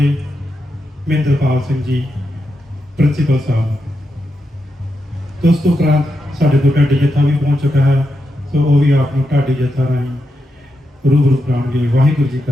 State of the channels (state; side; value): normal; both; correlation 0.86